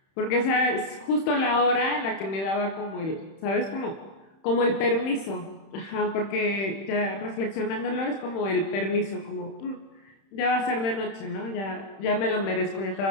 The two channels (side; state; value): right; late; 31 ms